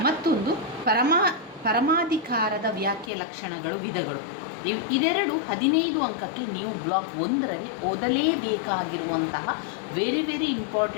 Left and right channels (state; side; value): drops out; right; at 3.1 s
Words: ಮತ್ತೊಂದು ಪರಮಾಧಿಕಾರದ ವ್ಯಾಖ್ಯೆ ಲಕ್ಷಣಗಳು ವಿಧಗಳು. ಇದೆರಡು 15 ಅಂಕಕ್ಕೆ ನೀವು ಬ್ಲಾಕ್ 1ರಲ್ಲಿ ಓದಲೇಬೇಕಾಗಿರುವಂತಹ ವೆರಿ